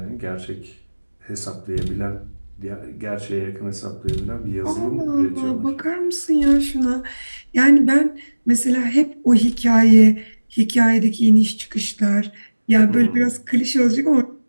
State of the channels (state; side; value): inverted; both; correlation -1.00